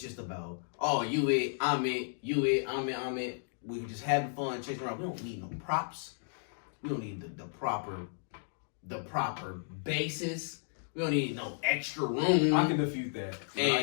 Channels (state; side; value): silent; right; digital silence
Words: just about, oh, you it, I'm it, you it, I'm it. We just having fun, chasing around. We don't need no props. We don't need the proper bases. We don't need no extra room. I can defute that.